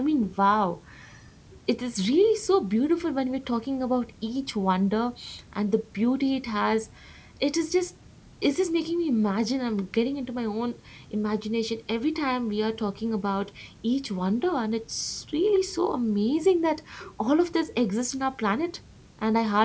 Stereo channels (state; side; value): identical; both; correlation 1.00